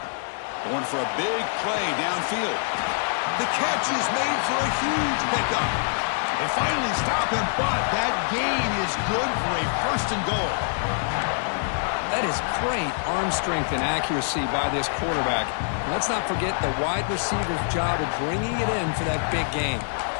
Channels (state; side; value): silent; right; digital silence